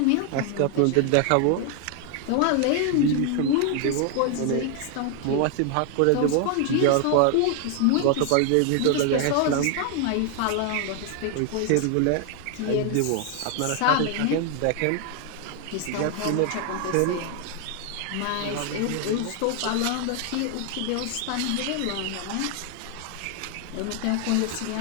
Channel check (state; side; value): different; both; correlation 0.00